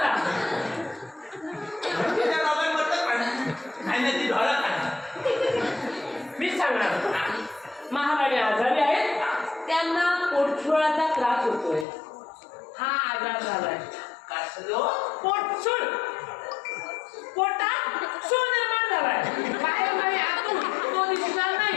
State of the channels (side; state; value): right; drops out; at 11.9 s